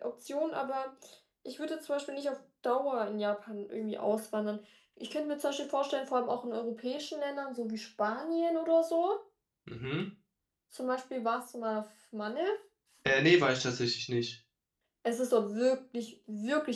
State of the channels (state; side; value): identical; both; correlation 1.00